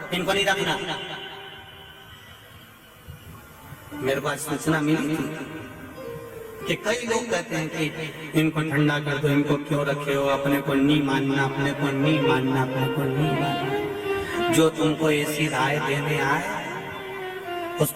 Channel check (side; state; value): both; identical; correlation 1.00